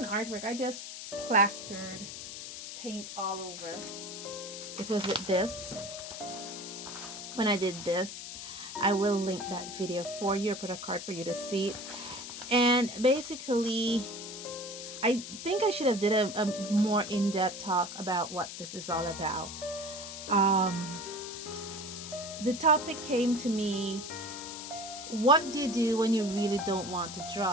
artwork. I just plastered paint all over. It was with this. When I did this, I will link that video for you, put a card for you to see it. And basically, I think I should have did a more in-depth talk about what this is all about. The topic came to me, what do you do when you really don't want to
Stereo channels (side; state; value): left; noise; hiss, 9 dB below the sound